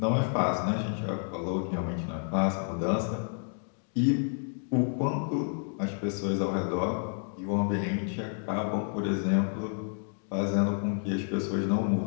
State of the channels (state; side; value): silent; right; 58 dB below the other